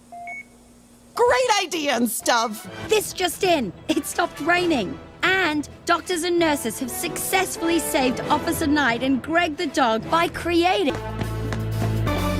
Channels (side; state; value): both; identical; correlation 1.00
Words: Great idea and stuff. This just in. It stopped raining. And doctors and nurses have successfully saved Officer Knight and Greg the dog by creating...